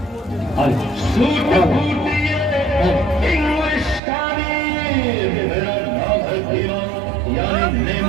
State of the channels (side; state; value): left; drops out; at 4.0 s